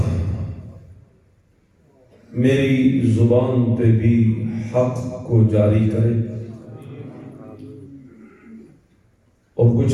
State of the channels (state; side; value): identical; both; correlation 1.00